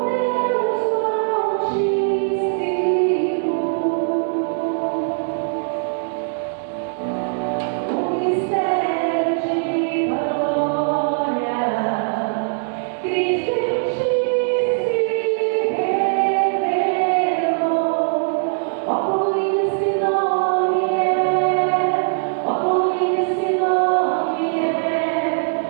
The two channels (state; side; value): silent; left; digital silence